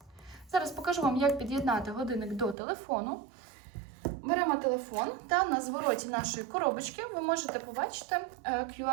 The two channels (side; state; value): left; drops out; at 2.6 s